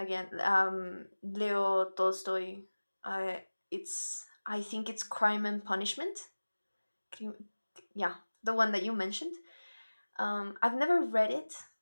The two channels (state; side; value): inverted; both; correlation -1.00